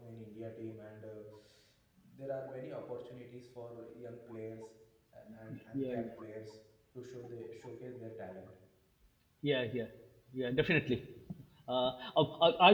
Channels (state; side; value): identical; both; correlation 1.00